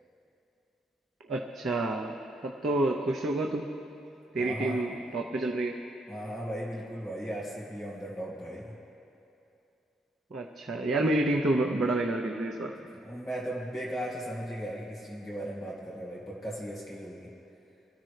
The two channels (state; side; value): normal; both; correlation 0.73